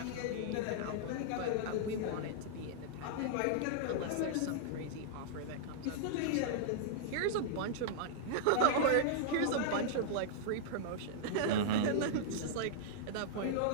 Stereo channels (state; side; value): different; both; correlation -0.02